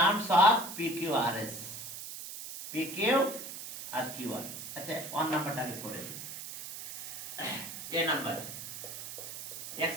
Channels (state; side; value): noise; right; hiss, 9 dB below the sound